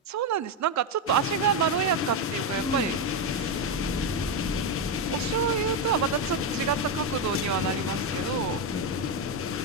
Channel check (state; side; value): normal; both; correlation 0.07